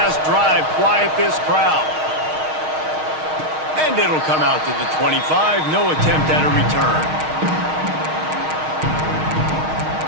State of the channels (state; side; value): late; left; 6.4 ms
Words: drive quiet this crowd. And it'll come out to the 25. No attempt at a return.